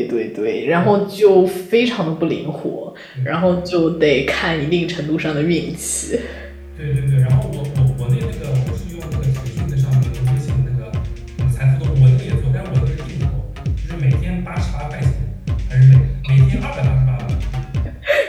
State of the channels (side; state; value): both; identical; correlation 1.00